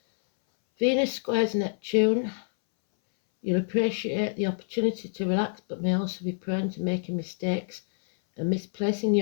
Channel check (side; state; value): right; silent; 60 dB below the other